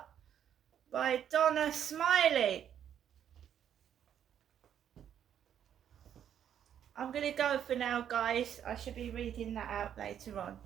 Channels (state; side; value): quieter; left; 9.4 dB